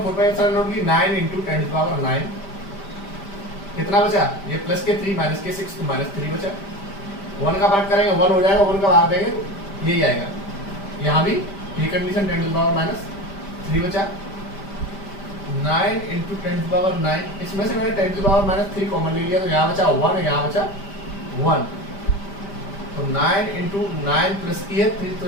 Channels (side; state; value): right; late; 5.1 ms